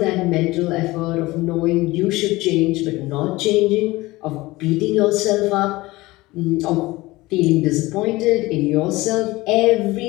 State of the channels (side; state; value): right; quieter; 20.1 dB